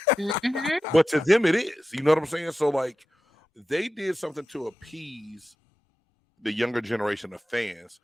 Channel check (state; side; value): normal; both; correlation 0.92